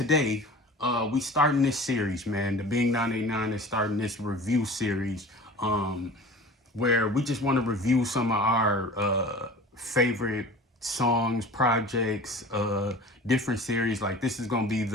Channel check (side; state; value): both; normal; correlation 0.40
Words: We starting this series, man. The Bing 989 is starting this review series. Where we just want to review some of our favorite songs, projects, different series. Like this is gonna be